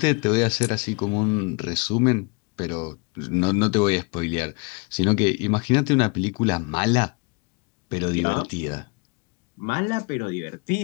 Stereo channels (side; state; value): right; quieter; 31.2 dB